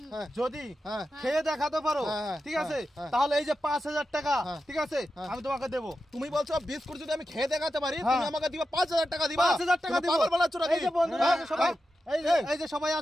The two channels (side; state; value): both; normal; correlation 0.90